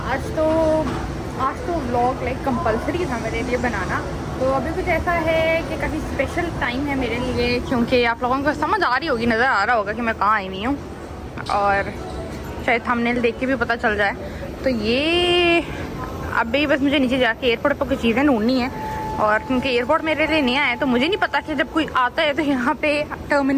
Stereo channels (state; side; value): identical; both; correlation 1.00